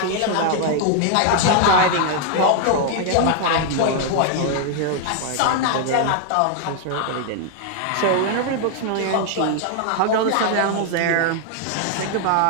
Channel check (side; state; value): both; different; correlation 0.00